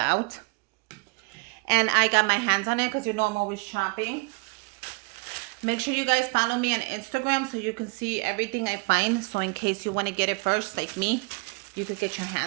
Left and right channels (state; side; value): quieter; left; 30.0 dB